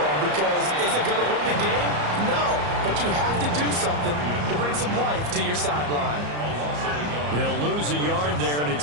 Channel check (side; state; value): left; late; 34 ms